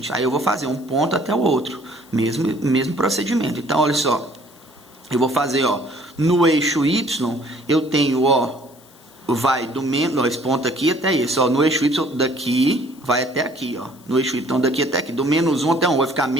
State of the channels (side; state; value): left; noise; hiss, 26 dB below the sound